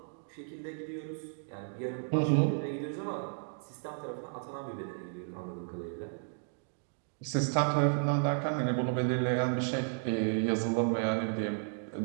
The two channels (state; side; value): silent; left; 55 dB below the other